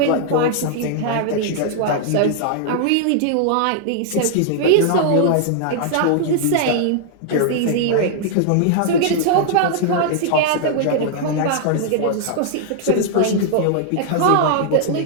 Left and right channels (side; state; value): both; different; correlation -0.01